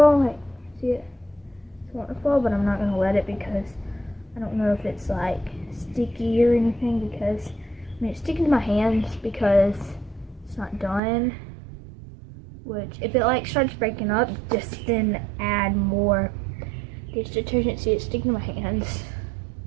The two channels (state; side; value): drops out; left; at 11.0 s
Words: Like, see it? It's wanting to fall, but I'm not gonna let it because I don't know if it's like sticky or anything. Because I mean, it's sticking to my hands because it's not done. Which, if it like starts breaking up, just then add more dish detergent. See, it's sticking to my hands.